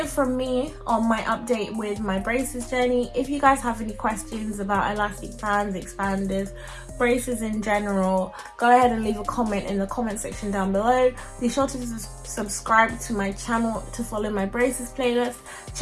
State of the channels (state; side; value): identical; both; correlation 1.00